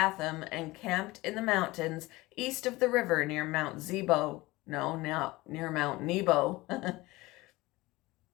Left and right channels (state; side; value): quieter; right; 20.5 dB